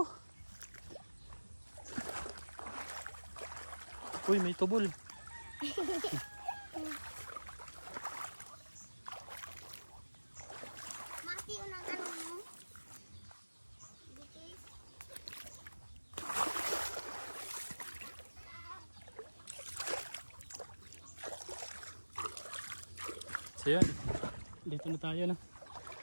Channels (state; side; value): inverted; both; correlation -1.00